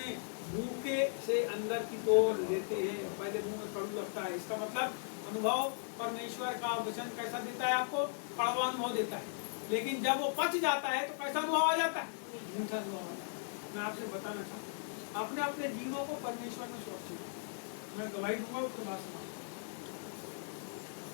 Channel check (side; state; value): right; silent; digital silence